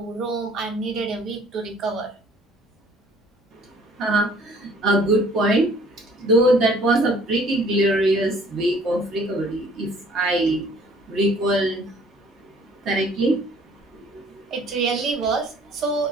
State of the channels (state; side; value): normal; both; correlation 0.56